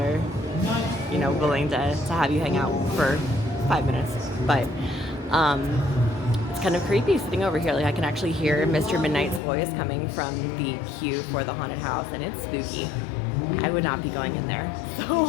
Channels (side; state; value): right; drops out; at 9.4 s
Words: you know, willing to have you hang out for 5 minutes, but it's kind of creepy sitting over here. Like I can actually hear Mr. Midnight's voice coming from the queue for the haunted house, and it's spooky. I would not be going in there.